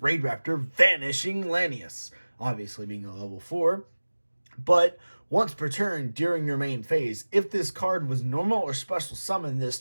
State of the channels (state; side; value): inverted; both; correlation -1.00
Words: Vanishing Lanius. Obviously being a level 4. But once per turn during your main phase, if this card was normal or special summoned this